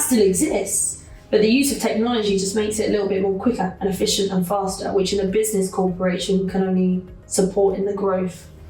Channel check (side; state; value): both; identical; correlation 1.00